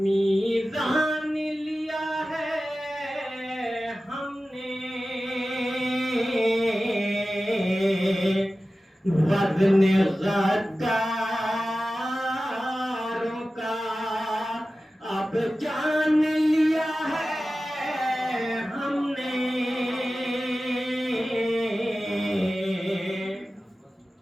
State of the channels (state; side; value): normal; both; correlation 0.95